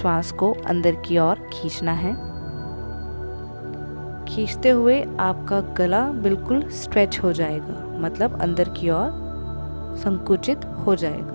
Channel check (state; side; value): inverted; both; correlation -1.00